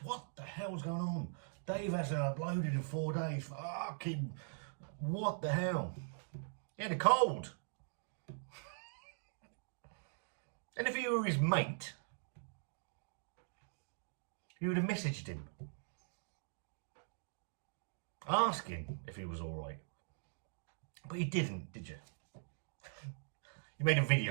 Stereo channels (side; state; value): left; silent; digital silence